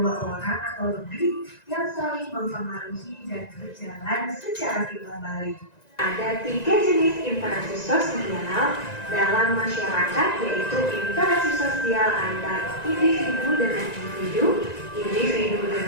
orang atau lebih yang saling mempengaruhi dan berjalan secara timbal balik. Ada 3 jenis interaksi sosial dalam masyarakat, yaitu interaksi sosial antar individu dengan individu, individu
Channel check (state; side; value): late; right; 1.9 ms